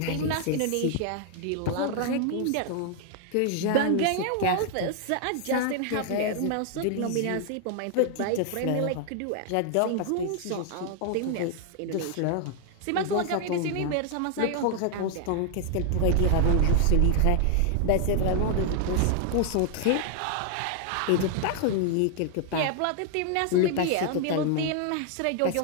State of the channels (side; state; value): both; different; correlation 0.00